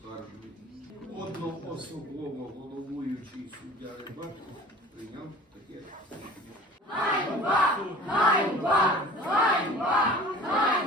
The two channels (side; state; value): both; normal; correlation 0.44